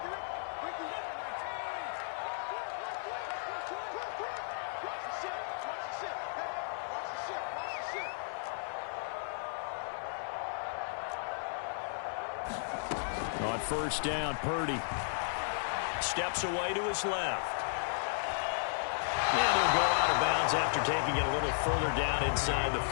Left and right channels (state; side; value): silent; right; 55 dB below the other